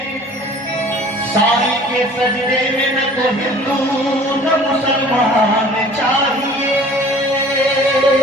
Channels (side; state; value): both; normal; correlation 0.48